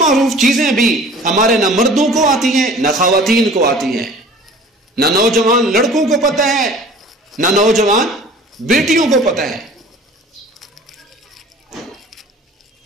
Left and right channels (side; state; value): both; normal; correlation 0.46